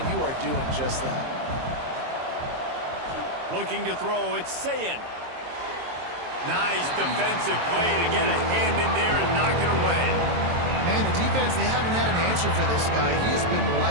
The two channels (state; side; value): late; left; 23 ms